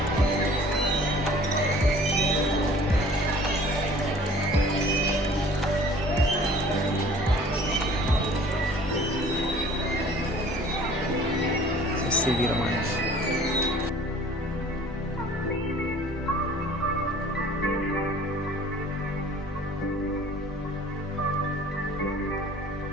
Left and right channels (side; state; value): both; normal; correlation 0.50